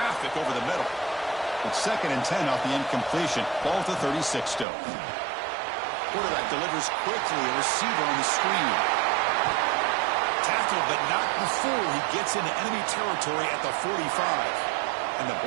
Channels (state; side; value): drops out; left; at 4.7 s